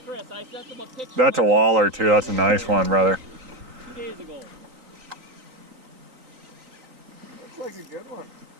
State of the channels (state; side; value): late; left; 3.9 ms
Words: That's a waller too. That's a nice one, brother. 2 days ago. Looks like a good one.